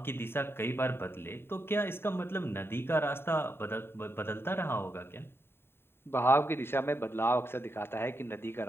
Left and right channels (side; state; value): right; late; 0.11 ms